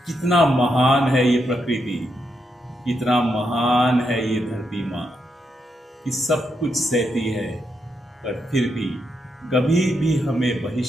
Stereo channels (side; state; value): both; normal; correlation 0.81